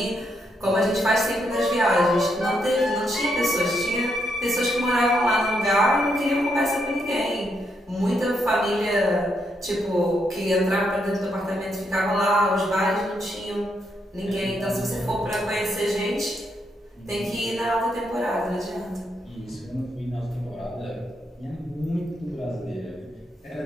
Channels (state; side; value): normal; both; correlation 0.79